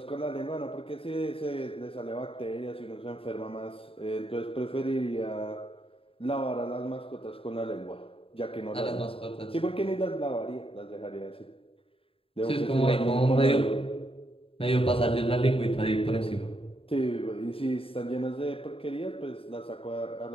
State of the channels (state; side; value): late; right; 0.27 ms